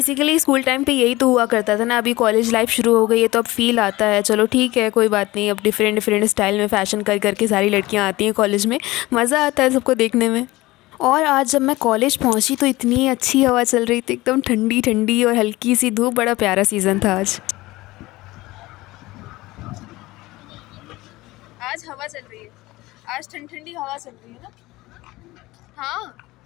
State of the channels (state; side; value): quieter; right; 19.4 dB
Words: स्कूल टाइम पे यही तो हुआ करता था ना। अभी कॉलेज लाइफ शुरू हो गई है तो अब फील आता है, चलो ठीक है कोई बात नहीं, अब डिफरेंट डिफरेंट स्टाइल में फ़ैशन कर करके सारी लड़कियां आती हैं कॉलेज में, मज़ा आता है सबको देखने में। और आज जब मैं कॉलेज पहुंची तो इतनी अच्छी हवा चल रही थी, एकदम ठंडी ठंडी और हल्की सी धूप। बड़ा प्यारा सीज़न था आज। आज हवा चल रही है, आज ठंडी ठंडी हवा चल रही है ना। हाँ,